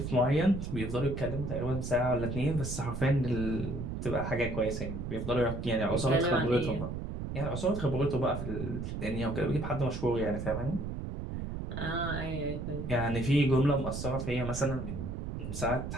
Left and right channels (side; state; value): right; noise; rumble, 5 dB below the sound